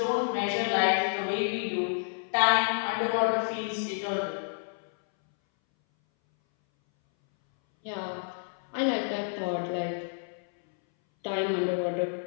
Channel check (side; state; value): right; silent; 58 dB below the other